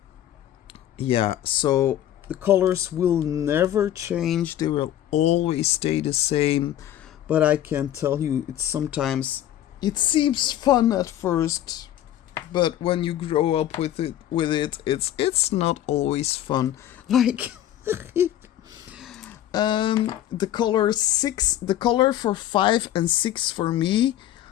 yeah, so the colors will never change, they will always stay the same. But I can tell you, it seems fun at first, but when you grow up with it, it's not always fun. Like the color for 5 and 6 for me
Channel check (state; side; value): quieter; right; 12.1 dB